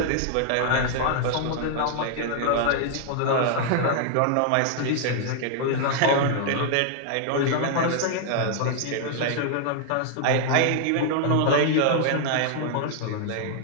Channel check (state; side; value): different; both; correlation -0.01